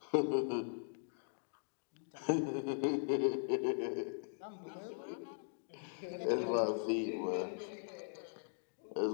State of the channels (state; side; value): silent; right; digital silence